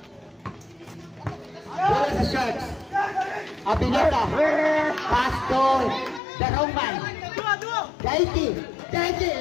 Where is the shots? Abinota. Pass to the Roman. Daiki.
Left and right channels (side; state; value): right; drops out; at 6.2 s